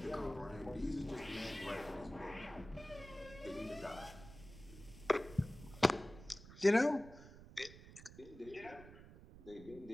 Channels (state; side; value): noise; right; rumble, 17 dB below the sound